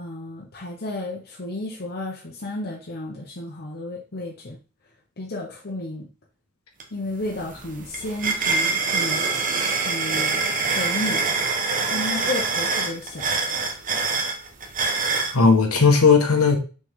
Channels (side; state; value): both; normal; correlation 0.17